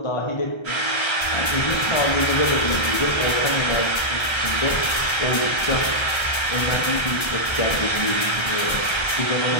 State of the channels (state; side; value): late; right; 1.3 ms